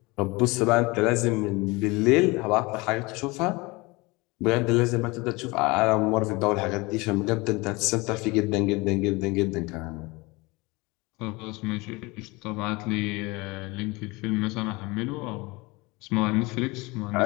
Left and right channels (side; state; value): right; quieter; 24.2 dB